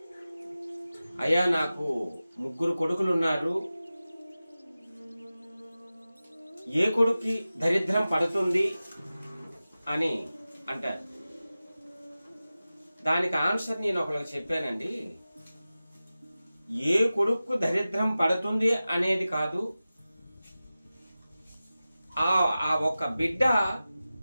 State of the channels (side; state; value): both; inverted; correlation -0.96